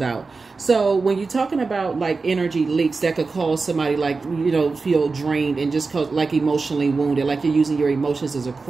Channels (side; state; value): left; quieter; 4.2 dB